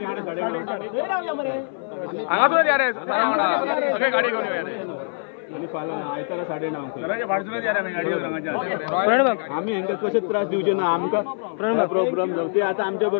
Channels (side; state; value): right; silent; 58 dB below the other